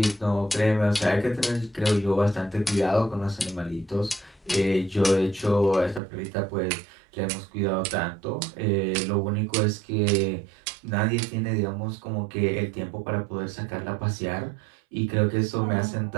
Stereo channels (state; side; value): drops out; left; at 6.0 s